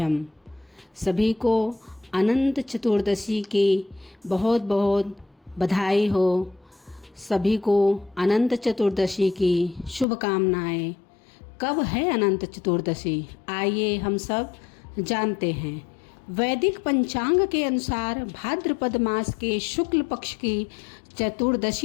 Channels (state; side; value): drops out; right; at 10.1 s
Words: सभी को अनंत चतुर्दशी की बहुत बहुत बधाई हो। सभी को अनंत चतुर्दशी की शुभकामनाएं। कब है अनंत चतुर्दशी? आइए हम सब जानते हैं। वैदिक पंचांग के अनुसार भाद्रपद मास के शुक्ल पक्ष की